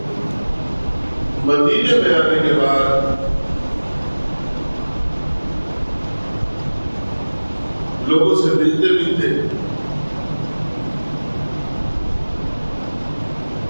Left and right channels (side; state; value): both; inverted; correlation -1.00